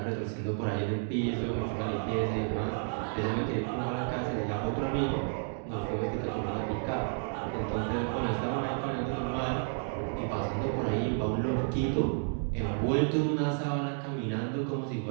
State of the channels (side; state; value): left; silent; 57 dB below the other